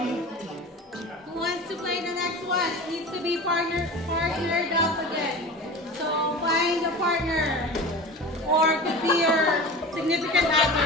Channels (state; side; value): normal; both; correlation 0.34